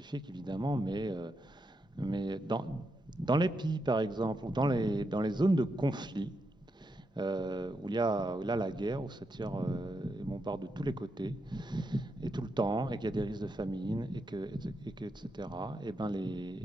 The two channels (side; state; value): both; normal; correlation 0.83